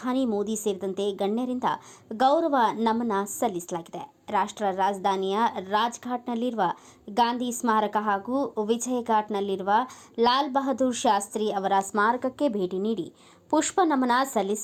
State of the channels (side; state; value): both; identical; correlation 1.00